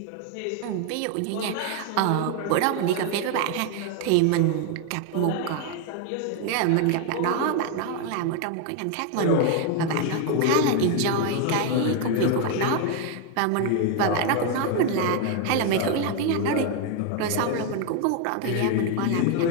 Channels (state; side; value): different; both; correlation 0.01